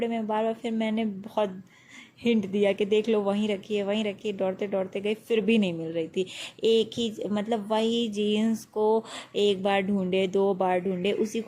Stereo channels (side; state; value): both; identical; correlation 1.00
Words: में बार बार। फिर मैंने बहुत हिंट दिया कि देख लो वहीं रखी है, वहीं रखी है। दौड़ते दौड़ते गई, फिर भी नहीं मिल रही थी। एक ही मतलब वही जीन्स को एक बार ढूंढे, दो बार ढूंढे, उसी